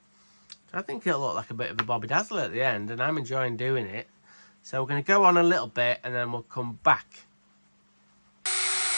So I think it'll look like a bit of a Bobby Dazzler at the end, and I'm enjoying doing it. So we're going to go on a little bit and then we'll come back.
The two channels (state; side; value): inverted; both; correlation -1.00